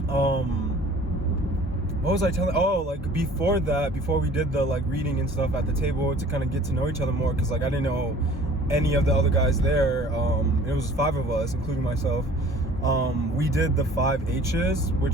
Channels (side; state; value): both; normal; correlation 0.50